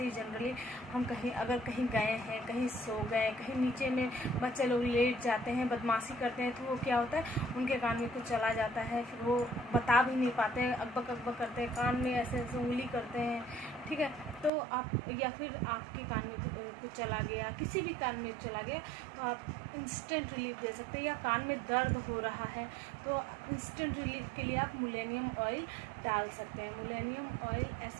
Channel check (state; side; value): drops out; left; at 14.5 s